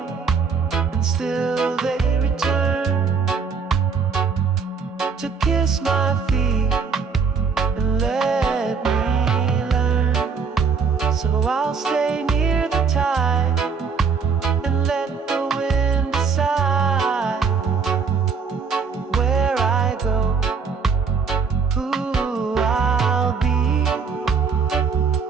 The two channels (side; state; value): left; quieter; 5.6 dB